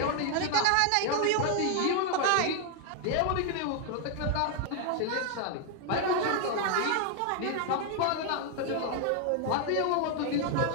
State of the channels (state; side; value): different; both; correlation 0.00